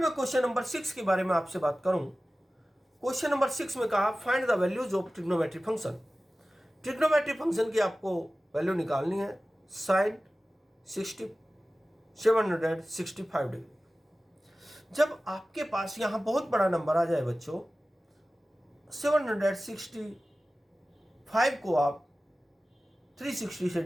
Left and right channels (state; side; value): normal; both; correlation 0.96